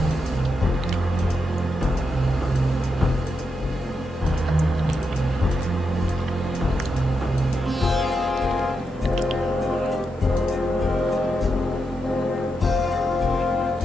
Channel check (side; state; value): both; normal; correlation 0.85